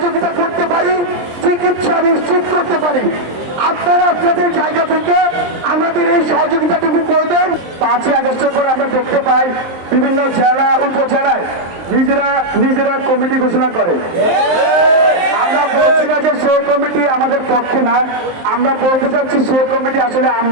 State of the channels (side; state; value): left; late; 23 ms